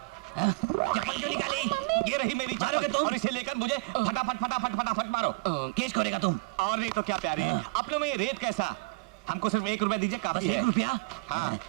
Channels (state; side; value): quieter; left; 25.2 dB